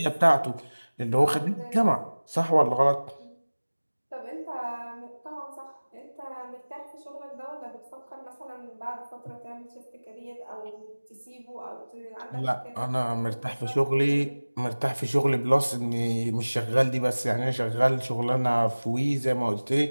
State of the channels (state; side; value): inverted; both; correlation -1.00